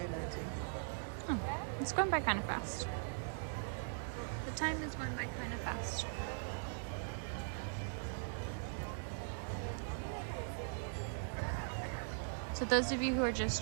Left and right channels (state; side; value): silent; left; digital silence